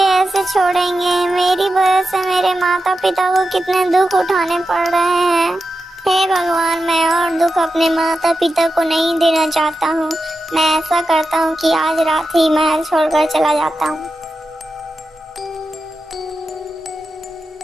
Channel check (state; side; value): normal; both; correlation 0.90